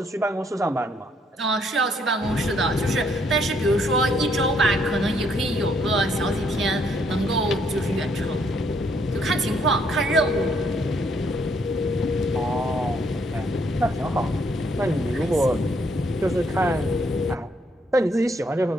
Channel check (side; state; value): both; normal; correlation 0.70